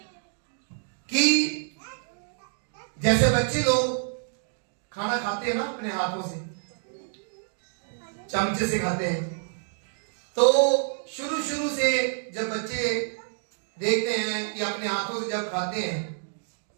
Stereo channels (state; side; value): silent; left; digital silence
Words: कि जैसे बच्चे लोग खाना खाते हैं ना अपने हाथों से, चमचे से खाते हैं, तो शुरू से जब बच्चे देखते हैं कि अपने हाथों से जब खाते हैं,